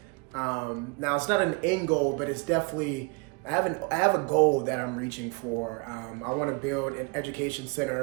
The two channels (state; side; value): quieter; left; 30.0 dB